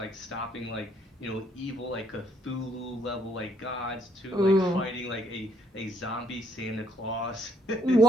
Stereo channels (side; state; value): both; normal; correlation 0.68